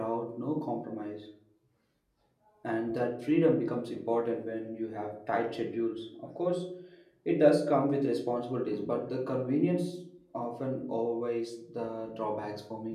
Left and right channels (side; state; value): both; identical; correlation 1.00